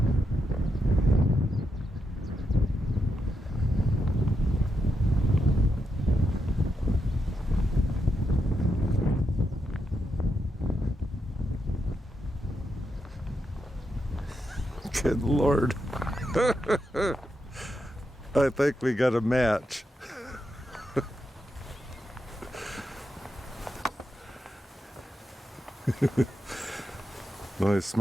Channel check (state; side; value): normal; both; correlation 0.84